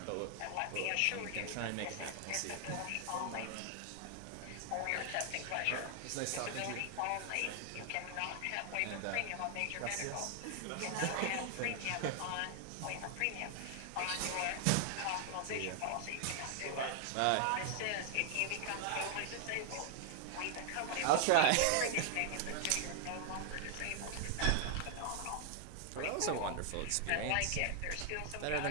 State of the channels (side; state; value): both; different; correlation 0.00